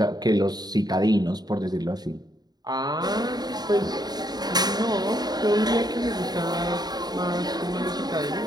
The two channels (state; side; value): late; left; 0.20 ms